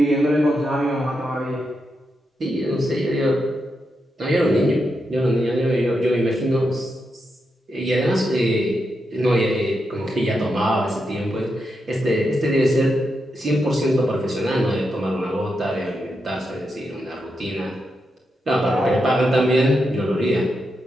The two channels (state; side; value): normal; both; correlation 0.85